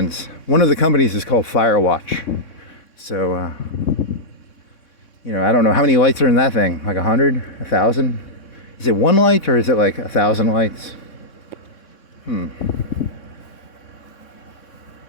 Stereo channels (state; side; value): late; right; 3.6 ms